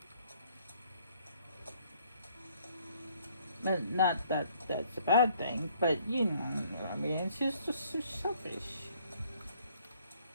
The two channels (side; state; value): both; inverted; correlation -0.63